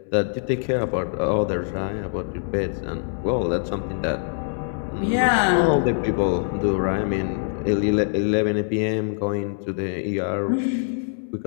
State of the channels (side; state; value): right; silent; digital silence